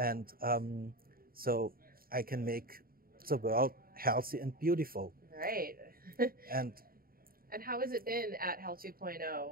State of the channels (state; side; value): late; left; 0.43 ms